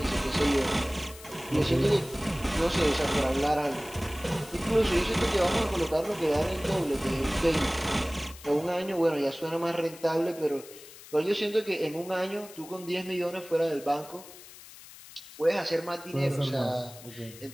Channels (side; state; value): left; noise; hiss, 18 dB below the sound